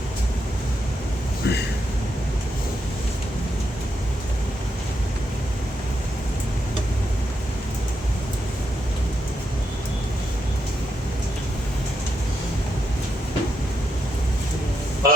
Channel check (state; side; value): normal; both; correlation 0.82